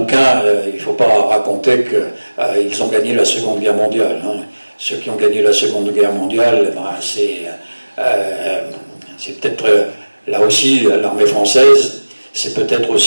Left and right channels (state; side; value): inverted; both; correlation -1.00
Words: il ne faut pas raconter qu'ils ont gagné la Seconde Guerre mondiale. Hein. Ceux qui ont gagné la Seconde Guerre mondiale, c'est peut-être là aussi l'armée française, c'est peut-être